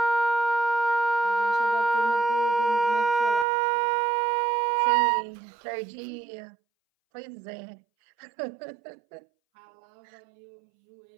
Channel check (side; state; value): left; drops out; at 3.5 s